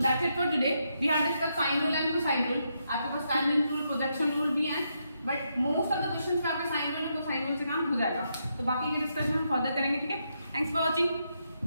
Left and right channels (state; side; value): inverted; both; correlation -0.80